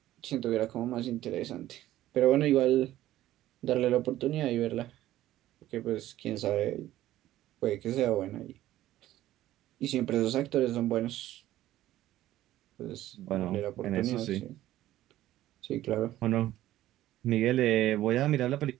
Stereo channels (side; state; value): left; quieter; 14.3 dB